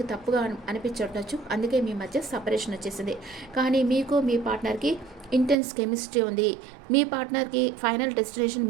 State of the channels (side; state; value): left; drops out; at 5.6 s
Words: తప్పుగా అనిపించుండొచ్చు. అందుకే మీ మధ్య సెపరేషన్ వచ్చేసింది. కానీ మీకు మీ పార్ట్నర్‌కి ఇంటెన్స్ కెమిస్ట్రీ ఉంది. మీ పార్ట్నర్‌కి ఫైనల్ డెస్టినేషన్